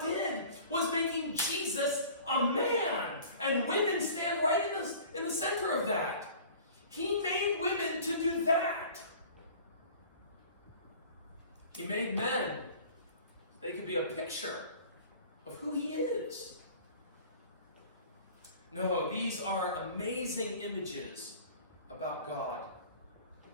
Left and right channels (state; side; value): inverted; both; correlation -0.45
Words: did was making Jesus a man. And women stand right in the center of that. He made women to do that. He made men. They could be a picture of who He is. No, these are amazing images about God.